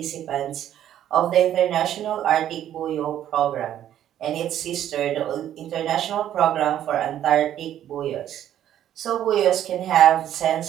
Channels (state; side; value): quieter; left; 11.2 dB